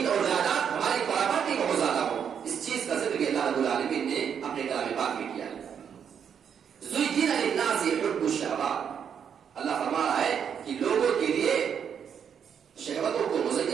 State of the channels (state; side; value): quieter; left; 7.8 dB